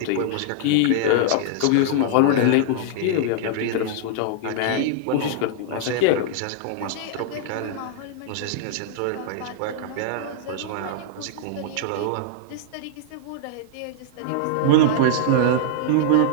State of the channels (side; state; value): both; different; correlation -0.01